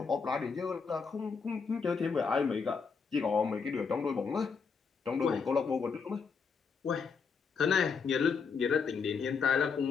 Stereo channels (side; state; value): right; quieter; 5.5 dB